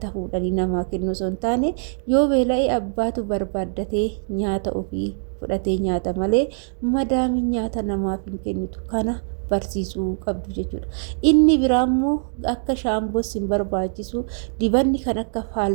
fuudhanii namaa kennu osoo hin taane yoo beela'ee abbaatu barbaaddatee nyaata ofii fudhatee nyaata malee madaamiin nyaata namaaf hin kennitu. Kana barsiisuu qabdu jechuudha. Inni biraa immoo akka shaamboos hin barbaachisu, dibanni kan akka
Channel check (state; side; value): silent; left; digital silence